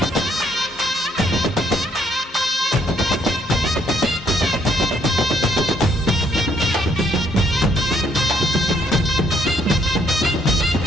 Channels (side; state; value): both; normal; correlation 0.69